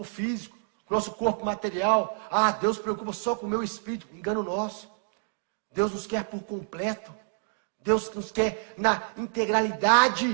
físico, com o nosso corpo material. Ah, Deus se preocupa só com o meu espírito. Engano nosso. Deus nos quer por completo. Deus nos quer na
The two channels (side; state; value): left; silent; digital silence